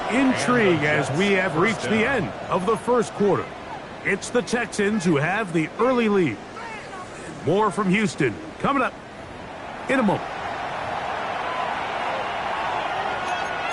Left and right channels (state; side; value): identical; both; correlation 1.00